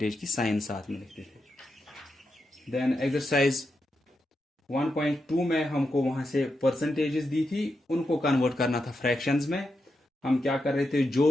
की साइन साथ में लिखते थे। देन एक्सरसाइज 1.2 में हमको वहां से परसेंटेजेस दी थी, उनको कन्वर्ट करना था फ्रैक्शंस में। हम क्या कर रहे थे,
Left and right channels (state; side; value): normal; both; correlation 0.86